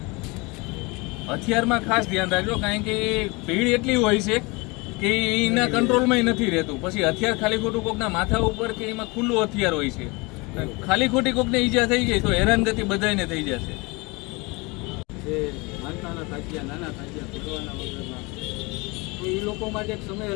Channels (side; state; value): right; quieter; 26.3 dB